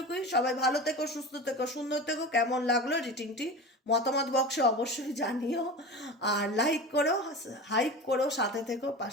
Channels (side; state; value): both; normal; correlation 0.30